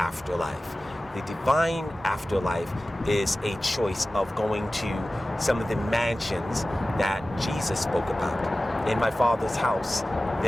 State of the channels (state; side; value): normal; both; correlation 0.96